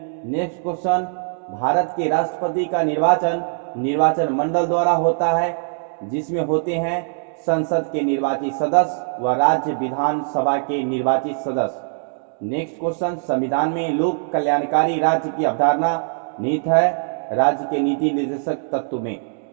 नेक्स्ट क्वेश्चन, भारत के राष्ट्रपति का निर्वाचन मंडल द्वारा होता है, जिसमें होते हैं संसद के निर्वाचित सदस्य व राज्य विधानसभा के निर्वाचित सदस्य। नेक्स्ट क्वेश्चन, संविधान में लोक कल्याणकारी राज्य की अवधारणा निहित है राज्य के नीति निर्देशक तत्व में।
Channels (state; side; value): silent; left; digital silence